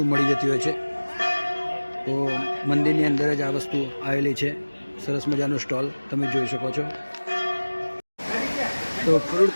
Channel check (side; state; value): both; inverted; correlation -1.00